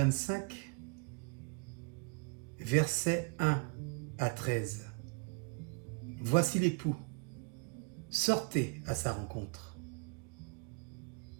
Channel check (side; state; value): left; quieter; 34.7 dB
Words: versets 1 à 13. Voici l'époux, sortez à sa rencontre.